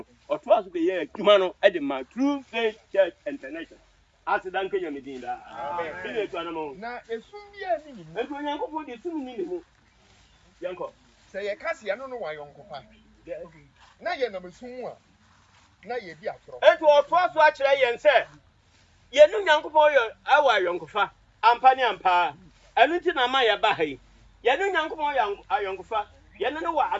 ɔto aso be yɛ adwuma no ɛde ma true faith church international asidan kenya medin da amen bi ne to anamo na esum bi ani ni mu ɛto onyankopɔn de sum ni ne mu yanko sɛ ye kase ya no no wa yonkopa na ye na mesum a na ye di atoro ɛto ɔto aso akyerɛ yɛn sɛ yɛnu nyankopɔn yɛ awa yonkofa ampa ne ampa ɛno nti na ma yɛ ba ha yi yɛnu nyankopɔn yɛ ayonkofa yɛnu no wɔ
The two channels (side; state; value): both; identical; correlation 1.00